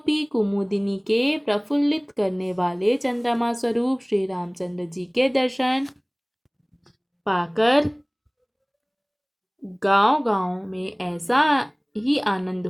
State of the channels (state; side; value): identical; both; correlation 1.00